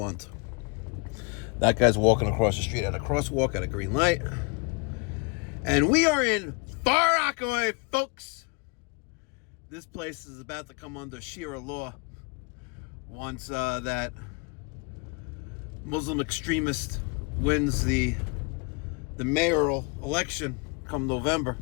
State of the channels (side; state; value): right; quieter; 30.5 dB